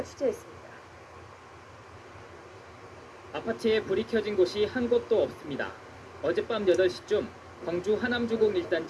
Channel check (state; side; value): identical; both; correlation 1.00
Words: 취재했습니다. 아파트에 불이 켜진 곳이 한 곳도 없습니다. 어젯밤 8시쯤 광주 하남주공